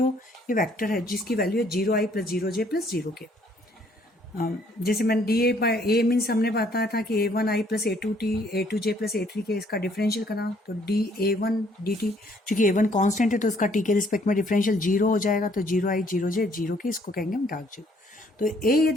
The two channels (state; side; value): normal; both; correlation 0.64